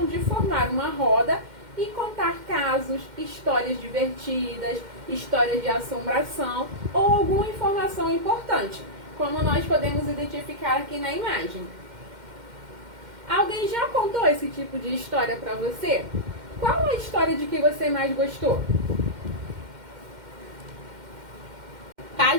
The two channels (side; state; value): left; late; 2.1 ms